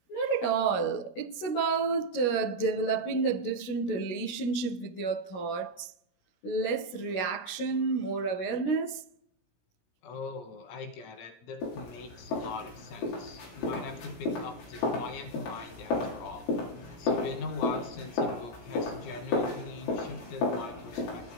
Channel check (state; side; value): late; right; 17 ms